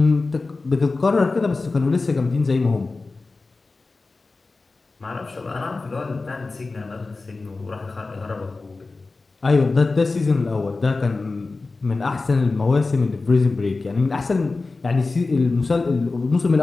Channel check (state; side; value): quieter; right; 3.7 dB